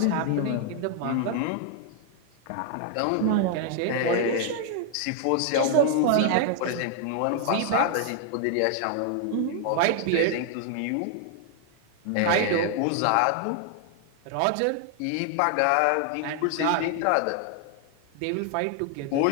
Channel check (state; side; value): different; both; correlation 0.00